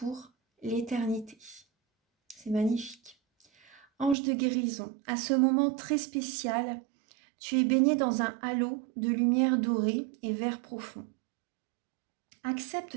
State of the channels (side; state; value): left; drops out; at 4.2 s